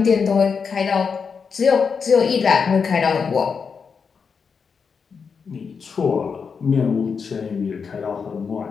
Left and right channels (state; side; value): quieter; right; 5.8 dB